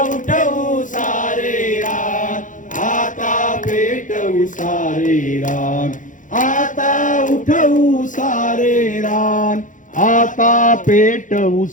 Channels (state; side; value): late; right; 0.37 ms